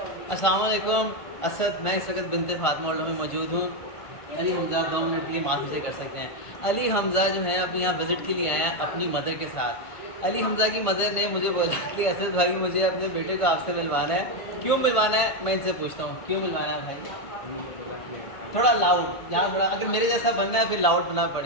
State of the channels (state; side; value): late; right; 1.5 ms